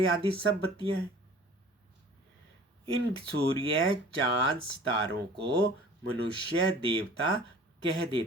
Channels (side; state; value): both; normal; correlation 0.46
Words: आदि सब बत्तियां हैं। इन सूर्य चांद सितारों को मनुष्य देवता कह